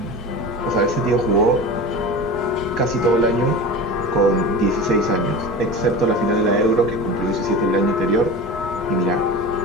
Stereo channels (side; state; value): both; normal; correlation 0.31